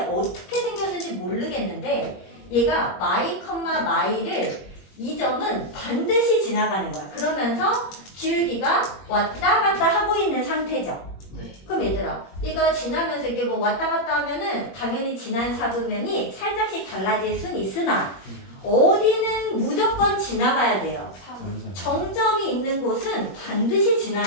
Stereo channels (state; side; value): late; right; 21 ms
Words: 어떻게 생겼는지 모르겠는데 얘가 마이 컴마 마일을 이 점은 반드시 지나가는 거야. 그러면서 기울기가 왔다 갔다 하고 있는 상태죠. 그럼 얘들아 이거 지나면서 이게 뭐 왔다 갔다 하면은 당연히 지난 사분면이 살짝씩 달라질 순 있으나 어디는 무조건 지나가야 돼요. 정점이 있는 곳은 반드시